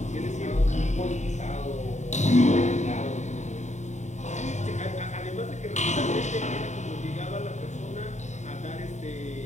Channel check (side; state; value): right; late; 0.34 ms